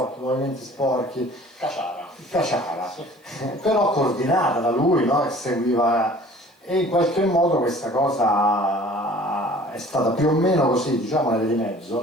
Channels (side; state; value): both; normal; correlation 0.49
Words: movimenti sporchi, caciara, però coordinata da lui, no? Che seguiva, e in qualche modo questa cosa è stata più o meno così, diciamo nelle di mezzo,